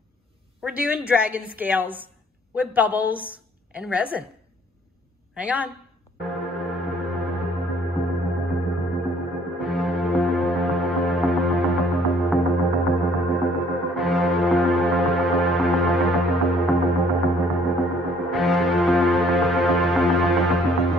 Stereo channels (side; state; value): both; normal; correlation 0.60